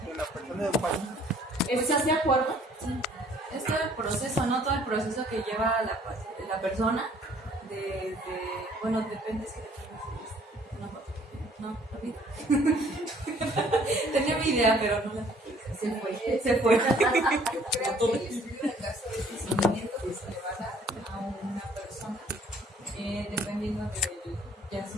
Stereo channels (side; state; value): both; normal; correlation 0.59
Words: una persona de un paciente. ¿Estás de acuerdo? Sí. Este proceso, ¿no? Todo el proceso que lleva la persona, bueno, depende si una foto. No, olvida. Tenía mi idea, pero no la se fue. Yo creo que el estudio de caso es el seguimiento que se le va a dar a una persona, dependiendo del, ya